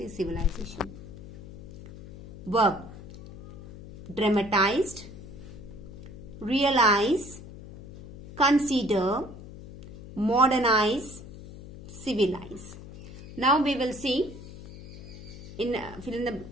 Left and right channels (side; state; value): left; noise; hum, 15 dB below the sound